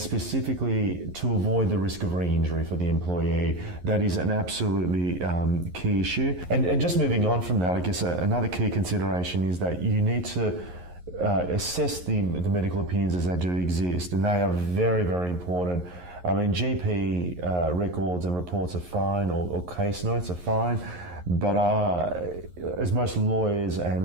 specifically to avoid the risk of re-injury for the employee. That is an absolutely key issue. And just moving on from that, I guess another key consideration is that you need to assess the medical opinions as they do exist, and they are very, very important. I mean, GP records and reports are fine, or case notes are fine, but as most lawyers and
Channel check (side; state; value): left; late; 11 ms